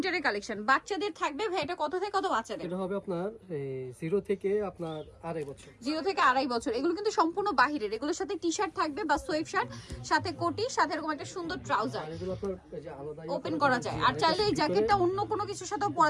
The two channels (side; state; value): both; identical; correlation 1.00